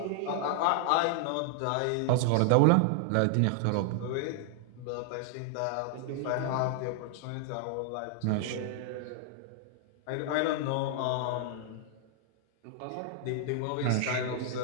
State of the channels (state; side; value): different; both; correlation 0.00